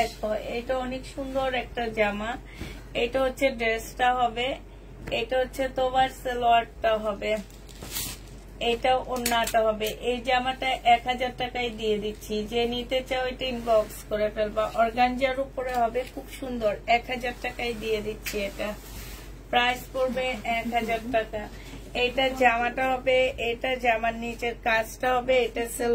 এটা অনেক সুন্দর একটা জামা। এটা হচ্ছে ড্রেসটা হবে, এটা হচ্ছে তোমার সালোয়ারটা হবে, এটা ওড়নাটা হবে। এই জামাটা 1000 টাকায় দিয়ে দিচ্ছি। যে নিতে চাও এটা ইনবক্স করে ফেলবা। অর্গানজার উপরে হবে, খুব সুন্দর, 1000 টাকায় দিয়ে দিচ্ছি। এটা প্রাইস পড়বে 1000 টাকা। এটা জামাটা হবে, এটা জামার নিচের কাজটা হবে, এটা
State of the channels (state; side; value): identical; both; correlation 1.00